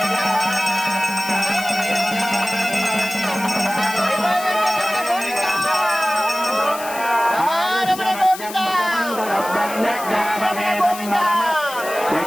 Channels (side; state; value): left; noise; hiss, 12 dB below the sound